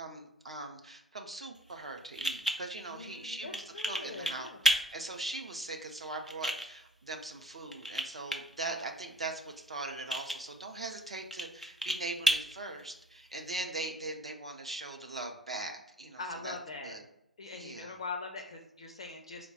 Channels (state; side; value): normal; both; correlation 0.54